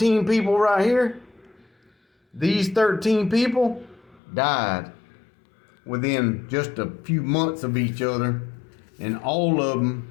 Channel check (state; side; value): drops out; right; at 4.2 s